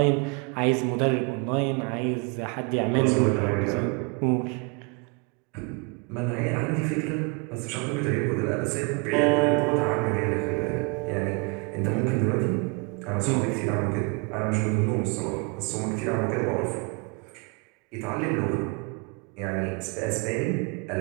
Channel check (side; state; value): left; quieter; 31.6 dB